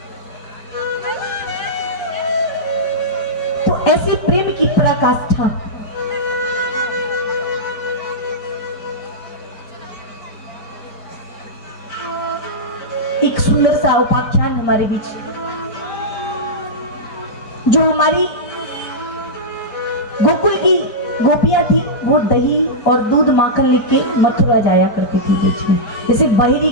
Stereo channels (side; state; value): right; late; 4.6 ms